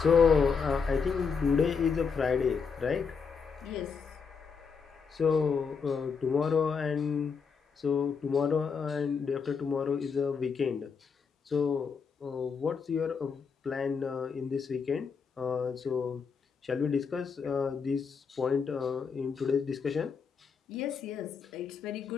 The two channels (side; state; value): right; quieter; 5.7 dB